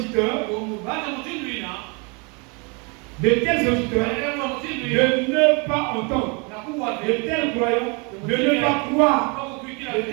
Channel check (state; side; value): quieter; left; 32.0 dB